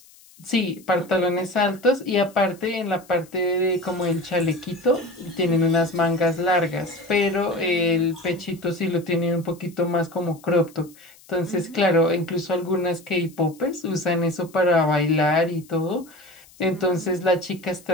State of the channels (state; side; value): noise; left; hiss, 26 dB below the sound